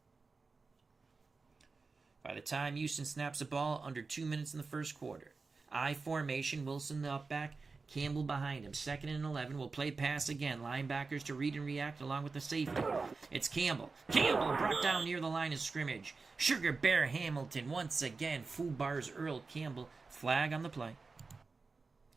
By the time Houston snaps the ball, under 2 minutes in the first quarter. I formation, Wilson the up back, Campbell behind him. 2nd and 11. We'll play pass again. Linebackers to read and react along with the safety. It's Campbell. Campbell brought down near the line of scrimmage. Sugar Bear Hamilton once again. Foobar's Earl Campbell. Flag on the play.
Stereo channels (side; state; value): left; quieter; 4.2 dB